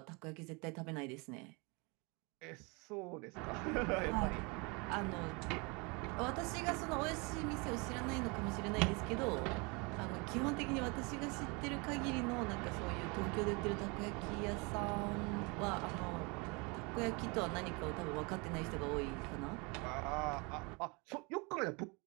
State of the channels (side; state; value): left; quieter; 29.4 dB